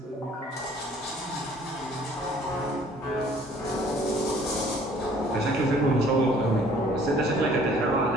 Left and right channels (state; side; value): normal; both; correlation 0.56